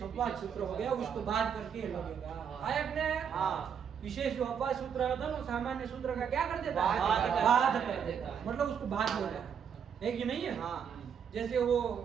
अपवाद सूत्र हो गया, उसको बात करके लगेगा। आया कि नहीं? विशेष जो अपवाद सूत्र होता है वो सामान्य सूत्र का क्या कर देता है? बाध कर देता है, मतलब उसको बाध देता है कि नहीं है? जैसे वो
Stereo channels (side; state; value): left; quieter; 7.6 dB